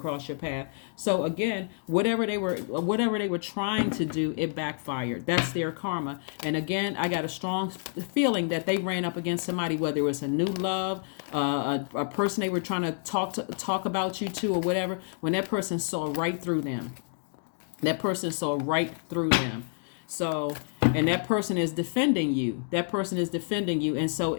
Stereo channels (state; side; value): silent; right; digital silence